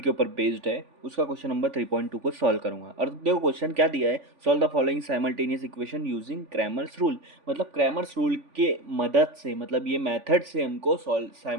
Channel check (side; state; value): left; late; 3.5 ms